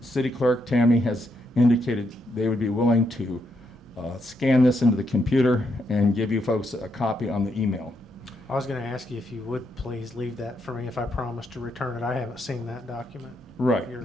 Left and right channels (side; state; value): both; normal; correlation 0.79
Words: clerk, Tammy, has indicated they would be willing to scan this into the computer and give you folks a copy on the email. I was going to ask you if you would please leave that for me if I promise to return it. I haven't seen that document. Right. of